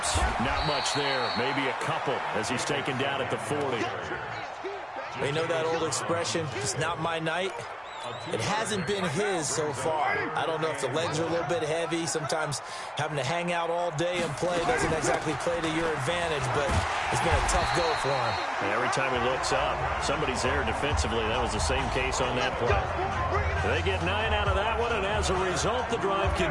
Not much there. Maybe a couple as he's taken down at the 40. You know that old expression, it's not my night? It hasn't been his so far. I don't know if the legs are a little bit heavy. Sometimes having to hang out all day and play doesn't exactly play to your advantage, but it's been a tough go for him. And every time he looks up, somebody's there defensively. That was the same case on that play. They get 9 out of that one, and as a result, the drive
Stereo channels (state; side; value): identical; both; correlation 1.00